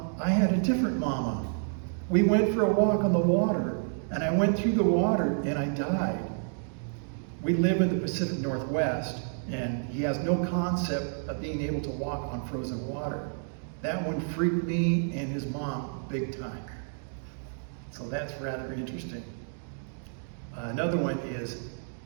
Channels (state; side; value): silent; left; digital silence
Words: I had a different mama. We went for a walk on the water, and I went through the water and I died. We live in the Pacific Northwest, and he has no concept of being able to walk on frozen water. That one freaked me and his mom big time. So that's rather interesting. Another one is,